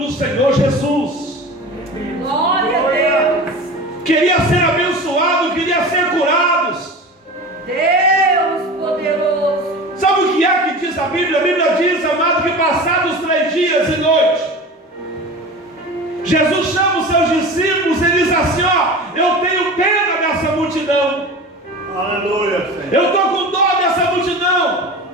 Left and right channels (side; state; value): both; normal; correlation 0.33